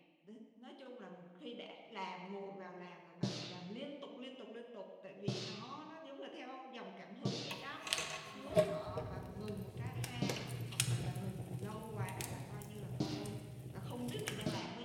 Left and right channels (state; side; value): identical; both; correlation 1.00